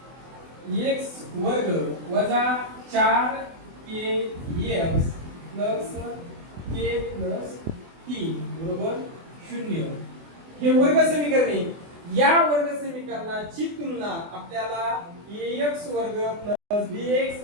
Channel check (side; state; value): left; late; 24 ms